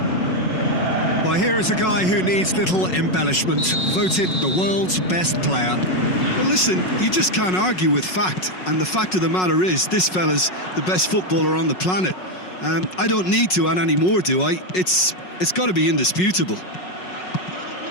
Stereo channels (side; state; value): right; late; 5.4 ms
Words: Well, here is a guy who needs little embellishment, voted the world's best player. Well, listen, you just can't argue with fact, and the fact of the matter is this fella's the best footballer on the planet. I don't need to add any more, do I? It's got to be indisputable.